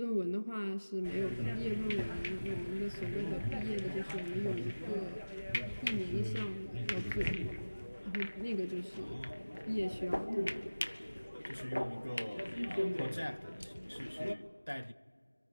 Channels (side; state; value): both; inverted; correlation -1.00